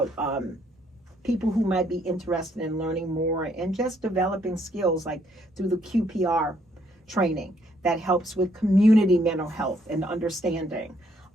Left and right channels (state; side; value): normal; both; correlation 0.69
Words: people who might be interested in learning more and just developing skills, like through the QPR training that helps with community mental health and understanding.